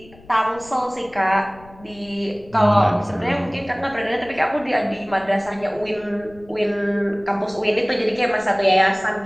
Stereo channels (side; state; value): left; noise; rumble, 23 dB below the sound